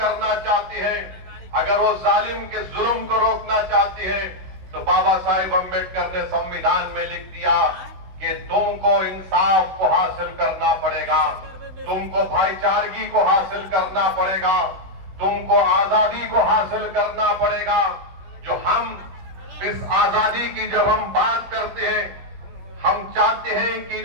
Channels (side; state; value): left; late; 16 ms